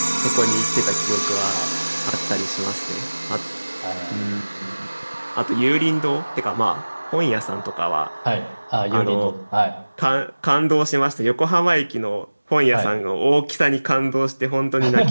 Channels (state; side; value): inverted; both; correlation -1.00